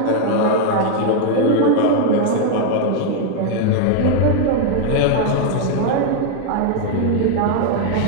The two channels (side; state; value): both; different; correlation 0.00